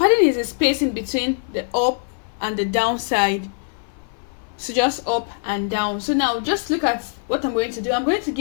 is a spacing between the up and the down side. So just up and down. So now just look at what I'm going to do. I'm going to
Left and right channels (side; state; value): right; silent; 55 dB below the other